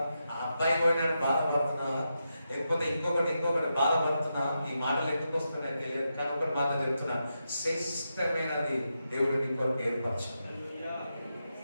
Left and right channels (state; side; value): inverted; both; correlation -0.86